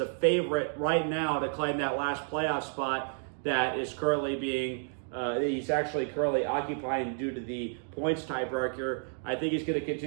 favorite right now to claim that last playoff spot that is currently being, he's actually currently occupying due to the points tiebreaker. I think he's going to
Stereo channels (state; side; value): silent; left; 57 dB below the other